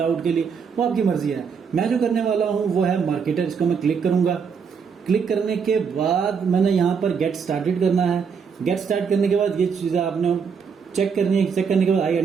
के लिए, वो आपकी मर्जी है। मैं जो करने वाला हूँ वो है मार्केटर। इसको मैं क्लिक करूंगा। क्लिक करने के बाद मैंने यहाँ पर गेट स्टार्टेड करना है। गेट स्टार्ट करने के बाद ये चीजें आपने चेक करनी है। चेक करने के बाद आई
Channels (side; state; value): left; quieter; 6.3 dB